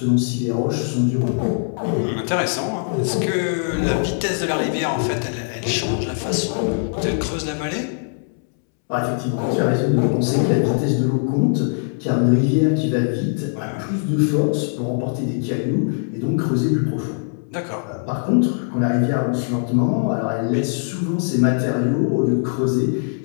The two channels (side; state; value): right; silent; 65 dB below the other